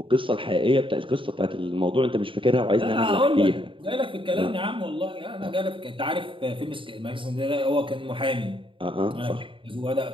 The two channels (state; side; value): late; left; 0.25 ms